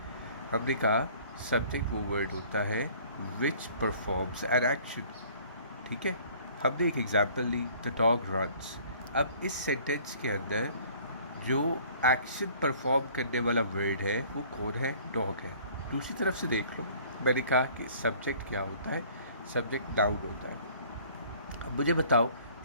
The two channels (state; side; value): inverted; both; correlation -0.53